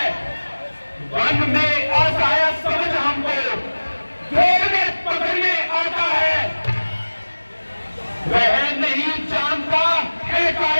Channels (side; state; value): both; inverted; correlation -1.00